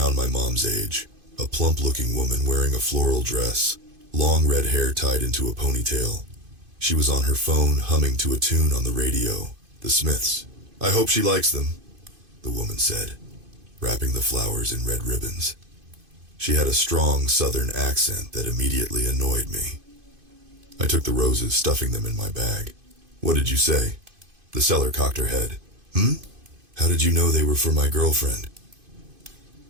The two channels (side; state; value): left; late; 2.5 ms